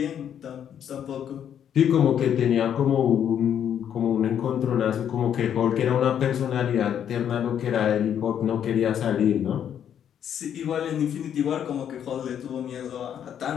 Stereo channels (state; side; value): quieter; right; 9.2 dB